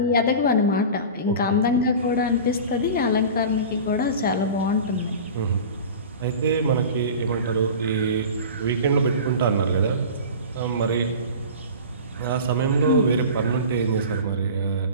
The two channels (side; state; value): both; inverted; correlation -0.34